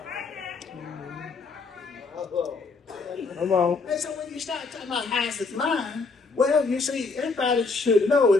Come on. And so when you start talking about how's his mind, well, you see, everybody should know,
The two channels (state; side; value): quieter; right; 4.2 dB